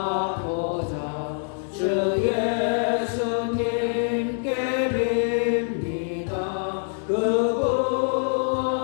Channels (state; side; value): silent; right; digital silence